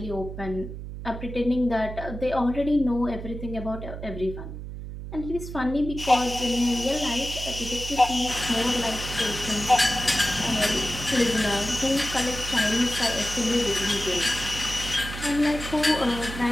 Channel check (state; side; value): noise; right; hum, 9 dB below the sound